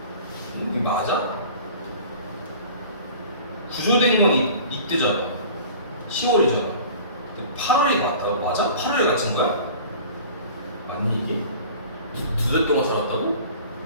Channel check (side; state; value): both; inverted; correlation -0.43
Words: 이게 맞아? 구조된 건 이때잖아. 10월이잖아. 8월이 맞다고? 맞아? 8월에 갇힌 거야? 맞니 이게? 두 달 동안 살았다고?